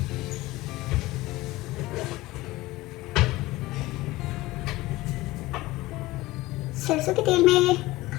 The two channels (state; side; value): quieter; right; 19.0 dB